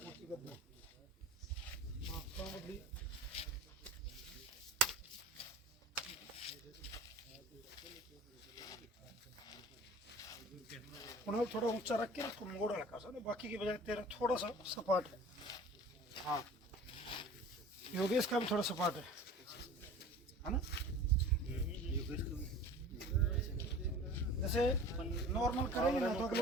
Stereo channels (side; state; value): both; normal; correlation 0.41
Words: थोड़ा ऊंचा रख के इसको मोड़ हल्का सा ना बाकी की बजाय तेरा थोड़ा सा सपाट है। हाँ योगेश का भी थोड़ा सपाट है ना। जैसे नॉर्मल करेंगे ना तो